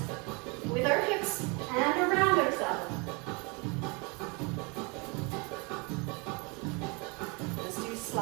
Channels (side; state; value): left; quieter; 30.2 dB